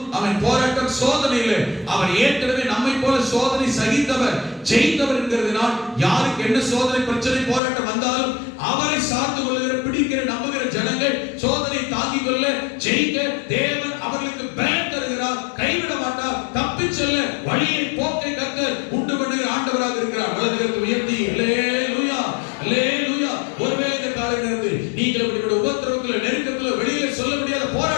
அவன் போராட்டம், சோதனை இல்லை. அவர் ஏற்கனவே நம்மை போல சோதனை சகித்தவர், ஜெயித்தவர் என்கிறதுனால் யாருக்கு என்ன சோதனை, பிரச்சனை, போராட்டம் வந்தாலும் அவரை சார்ந்து கொள்ளுகிற, பிடிக்கிற, நம்புகிற ஜனங்கள் சோதனை தாங்கிக் கொள்ள, ஜெயிக்க தேவன் அவர்களுக்கு பலன் தருகிறார், கைவிட மாட்டார். தப்பி செல்ல வழியை, போக்கை கர்த்தர் உண்டு பண்ணுகிற ஆண்டவராக இருக்கிறார். வலதுகரத்தை உயர்த்தி அல்லேலூயா, அல்லேலூயா. ஒருவேளை இந்த காலை நேரத்தில் நீங்கள் இப்படிப்பட்ட உபத்திரவத்தில், நெருக்கத்தில், வெளியில சொல்ல முடியாத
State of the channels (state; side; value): drops out; right; at 7.6 s